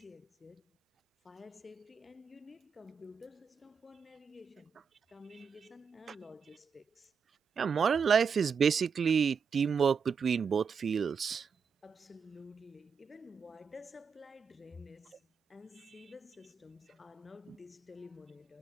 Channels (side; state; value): left; quieter; 6.1 dB